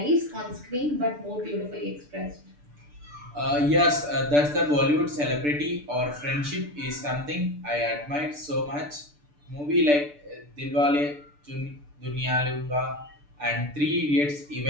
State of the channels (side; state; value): left; late; 6.8 ms